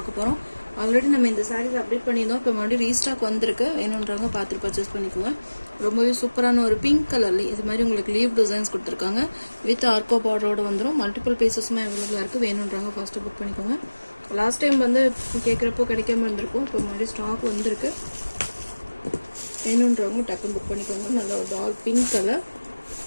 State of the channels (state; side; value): inverted; both; correlation -1.00